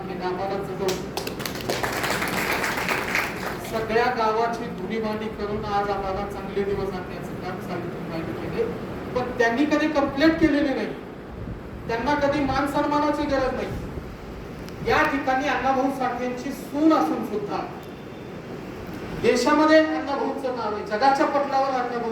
केलं. आम्हाला सगळ्या गावाची धुणीभांडी करून आज आम्हाला चांगले दिवस आणण्याचं काम सावित्रीबाईंनी केले. पण त्यांनी कधी कंप्लेंट केलेली नाही, त्यांना कधी मान सन्मानाची गरज नाही. या ठिकाणी अण्णाभाऊ साठेंची सून असून सुद्धा देशामध्ये अण्णाभाऊचं नाव आहे, जगाच्या पटलावर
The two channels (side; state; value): both; identical; correlation 1.00